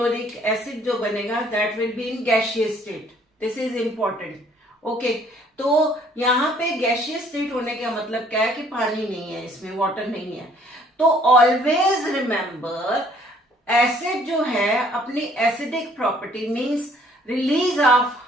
acid जो बनेगा that will be in gaseous state. This is important. Okay, तो यहाँ पे गैसियस स्टेट होने का मतलब क्या है कि पानी नहीं है इसमें, वाटर नहीं है. तो ऑलवेज रिमेंबर एसिड जो है अपनी acidic property means release of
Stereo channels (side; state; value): both; normal; correlation 0.60